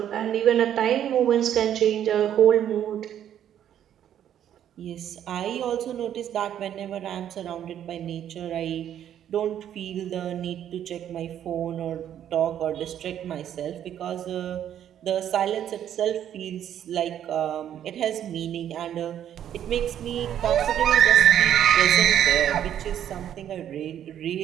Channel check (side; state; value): left; quieter; 10.3 dB